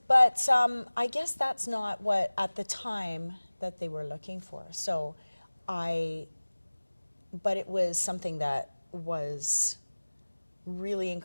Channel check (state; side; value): inverted; both; correlation -1.00